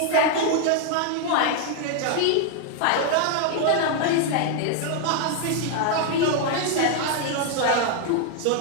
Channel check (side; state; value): both; different; correlation 0.00